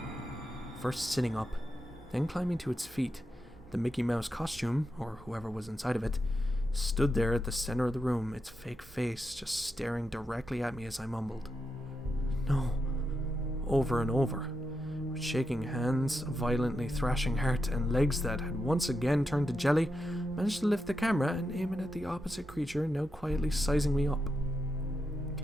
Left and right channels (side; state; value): both; normal; correlation 0.86